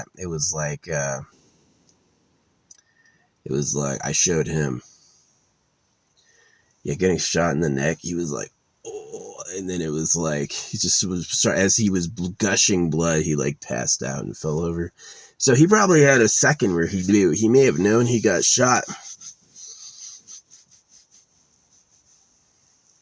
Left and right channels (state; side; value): identical; both; correlation 1.00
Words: It was like I showed him. Yeah, getting shot in the neck, he was like, oh, and then it was like, he just was, as he was gushing blood, he like passed out and fell over. So he probably had a second where he knew. He may have known he got shot.